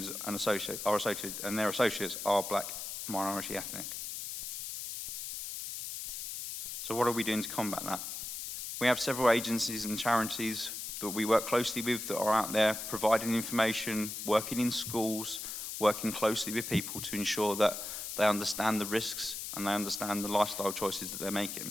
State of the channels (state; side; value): noise; left; hiss, 6 dB below the sound